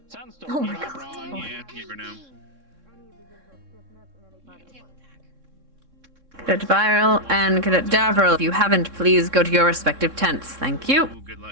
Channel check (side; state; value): left; late; 3.6 ms